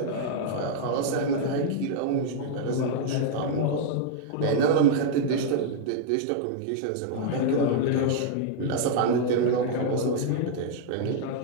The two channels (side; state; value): both; different; correlation -0.01